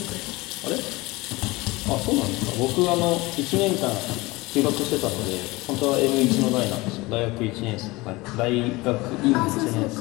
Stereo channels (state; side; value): quieter; right; 21.9 dB